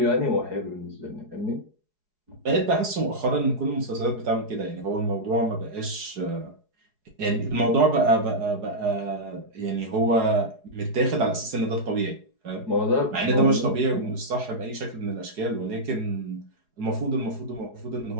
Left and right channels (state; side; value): late; left; 4.8 ms